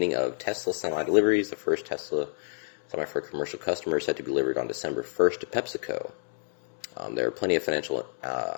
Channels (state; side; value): silent; right; digital silence